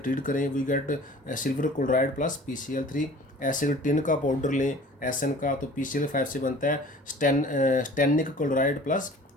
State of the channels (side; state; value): both; normal; correlation 0.46